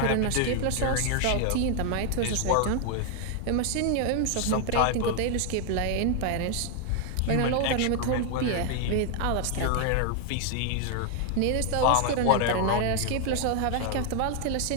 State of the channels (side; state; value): both; different; correlation 0.00